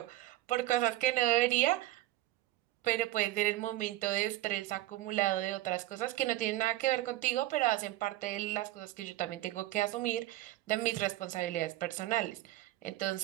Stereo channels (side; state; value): left; quieter; 15.7 dB